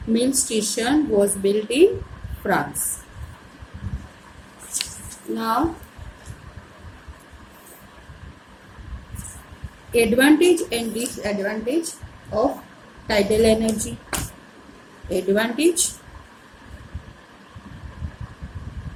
mill station was built in France. Now, advantage and disadvantage of tidal energy. Advantage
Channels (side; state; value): both; identical; correlation 1.00